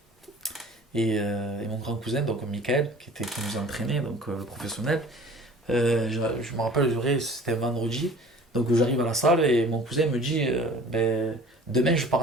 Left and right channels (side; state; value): both; normal; correlation 0.46